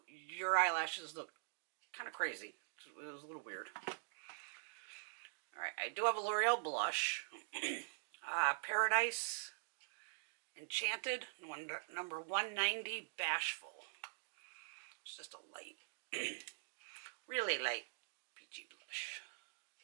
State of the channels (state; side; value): silent; left; digital silence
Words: your eyelashes look kind of crazy. It was a little weird. Alright, I do have a L'Oreal blush. Paradise Enchanted, number 190, Bashful. It's just a light, really light peachy blush.